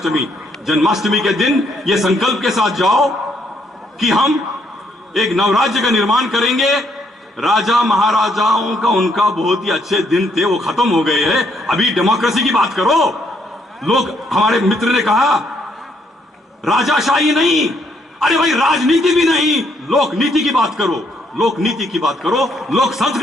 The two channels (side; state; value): both; normal; correlation 0.71